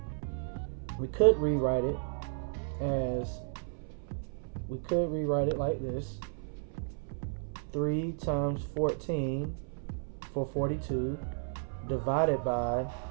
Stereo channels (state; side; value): silent; left; 56 dB below the other